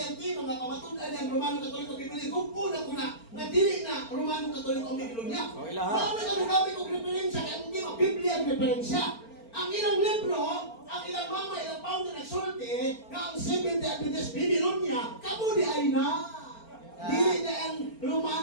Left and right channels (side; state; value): right; late; 4.4 ms